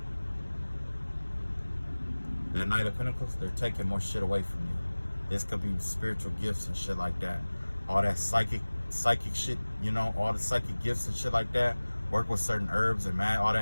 That Knight of Pentacles, they're taking more shit away from you. This could be spiritual gifts and shit like that. All that psychic shit, you know, all the psychic gifts and shit like that. Work with certain herbs and all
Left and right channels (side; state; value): both; inverted; correlation -1.00